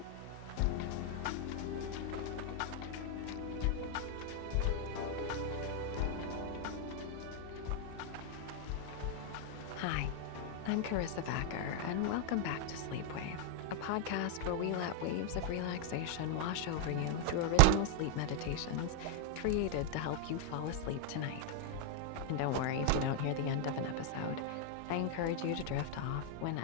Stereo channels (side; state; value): both; different; correlation 0.00